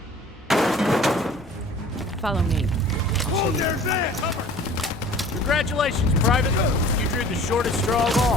it. Follow me. Hold there, Zan! Cover! Congratulations, Private. You drew the shortest straw of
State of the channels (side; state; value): both; normal; correlation 0.47